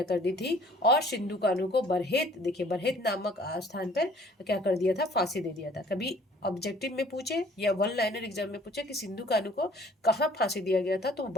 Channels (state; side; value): normal; both; correlation 0.55